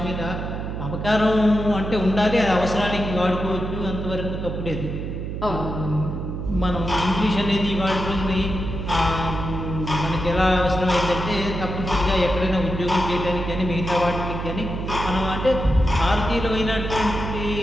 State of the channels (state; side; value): noise; right; hum, 5 dB below the sound